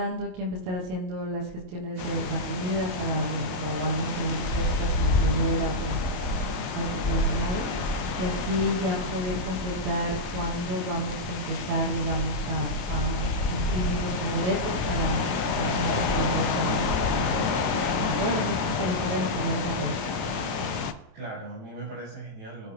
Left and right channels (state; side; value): late; left; 27 ms